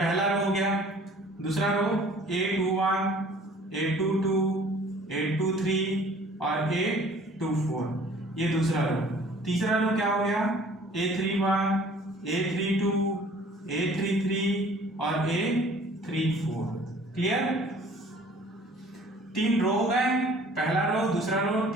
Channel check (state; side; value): normal; both; correlation 0.52